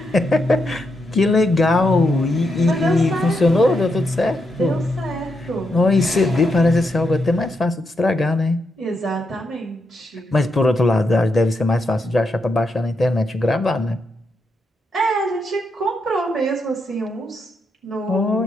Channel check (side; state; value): both; normal; correlation 0.82